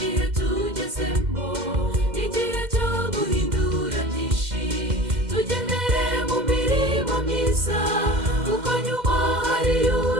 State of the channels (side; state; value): left; late; 2.1 ms